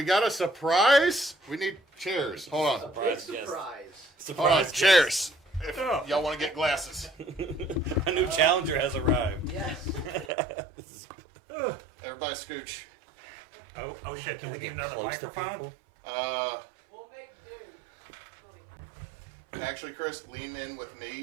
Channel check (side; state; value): left; drops out; at 10.3 s